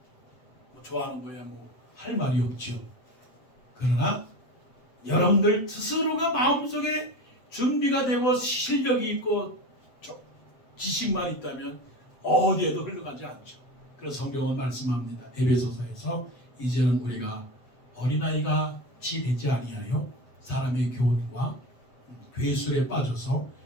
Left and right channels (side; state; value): right; late; 7.9 ms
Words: 뭐 좋아하는 거야 뭐 할 말이 없죠. 그러나 여러분들 스스로가 마음속에 준비가 되고 실력이 있고 지식만 있다면 어디에도 흘러가지 않죠. 그래서 성경은 말씀합니다. 에베소서에서 이제는 우리가 어린아이가 치 되지 아니하여 사람의 교훈과 괴술에 빠져서